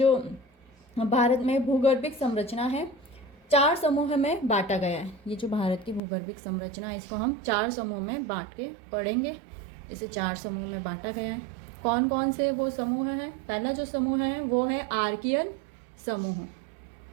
भारत में भूगर्भिक संरचना है 4 समूह में बांटा गया है। ये जो भारत की भूगर्भिक संरचना है इसको हम 4 समूह में बांट के पढ़ेंगे। इसे 4 समूह में बांटा गया है। कौन कौन से वो समूह हैं? पहला जो समूह है वो है आर्कियन समूह।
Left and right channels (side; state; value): left; drops out; at 6.0 s